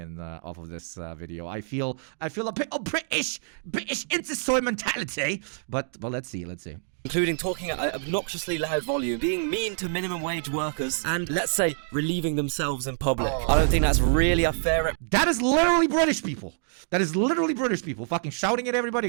off of this video. I feel a bit of British into-soy mentality. But let's see. Including talking at an obnoxiously loud volume, being mean to minimum wage workers, and, let's say, relieving themselves in public. I don't think that's really a fair... That is literally British people. Fucking shouting at everybody,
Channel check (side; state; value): left; silent; digital silence